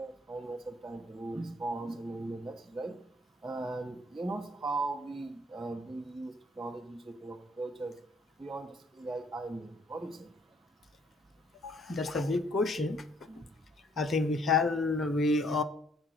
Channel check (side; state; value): both; normal; correlation 0.64